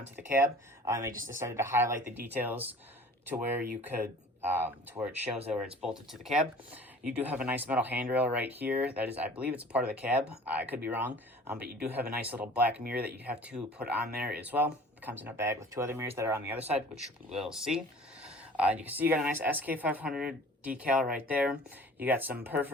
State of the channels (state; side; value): normal; both; correlation 0.46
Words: the cab. They just decided to highlight the details to where you could, to where it shows that where it's bolted to the cab. You do have a nice metal handrail right here. That is, I believe it's a part of the cab. I could be wrong, but you do have a nice little black mirror that you have to put on there as well. It comes in a bag with 2 other mirrors that are on the other side, which we'll see. You can see you got a nice SK500 decal right there. You got some